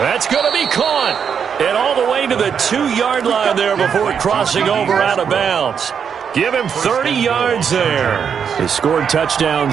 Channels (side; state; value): left; quieter; 7.2 dB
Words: going to be caught. And all the way to the 2-yard line there before crossing over out of bounds. Give him 30 yards there. They scored